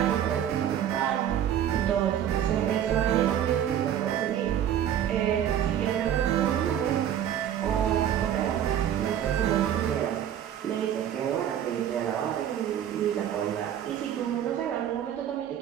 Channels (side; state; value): left; quieter; 10.2 dB